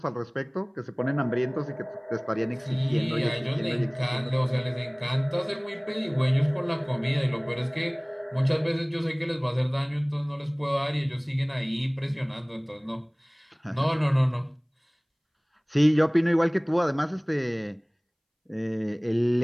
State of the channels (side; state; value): both; identical; correlation 1.00